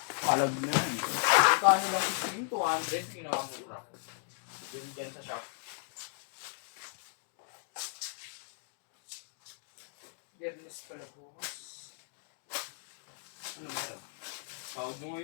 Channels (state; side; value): silent; right; digital silence